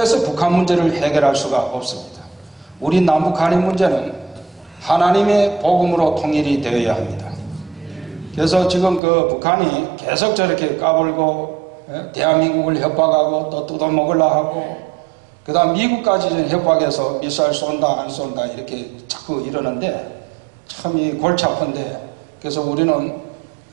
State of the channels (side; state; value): left; drops out; at 9.0 s